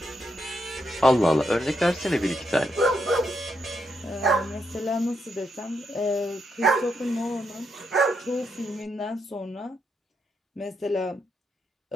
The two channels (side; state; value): both; normal; correlation 0.80